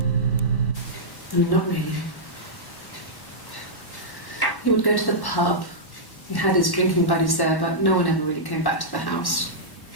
I mean, not really. He would go to the pub. He had his drinking buddies there, but no one ever really came back to the house.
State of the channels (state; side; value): late; right; 1.1 ms